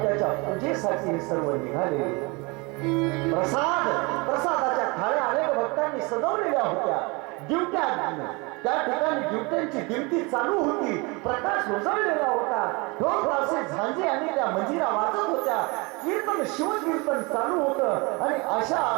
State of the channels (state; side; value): quieter; left; 27.5 dB